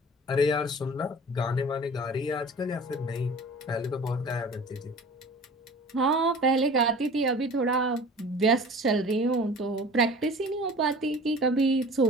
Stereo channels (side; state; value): both; normal; correlation 0.43